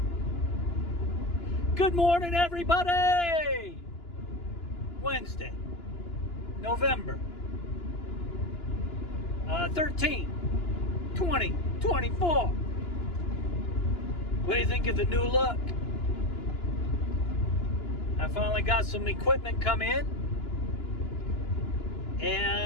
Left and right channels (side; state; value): right; late; 2.9 ms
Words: Good morning, everybody! Wednesday, November 13, 2024. What do you think of the new look? I finally got some equipment come in.